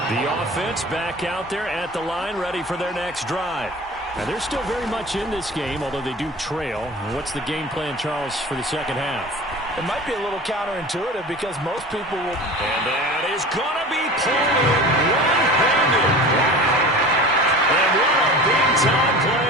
The offense back out there at the line, ready for their next drive. Now, they're still very much in this game, although they do trail. What's the game plan, Charles, for the second half? It might be a little counterintuitive because most people will... And that is going to be pulled in one-handed. And what a big-time play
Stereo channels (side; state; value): both; normal; correlation 0.37